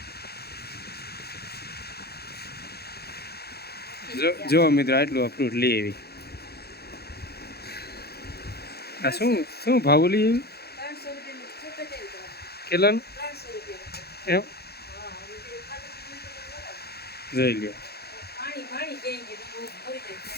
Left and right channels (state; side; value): late; right; 0.46 ms